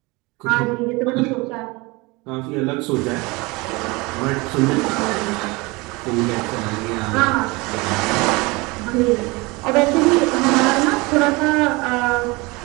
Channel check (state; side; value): quieter; left; 24.7 dB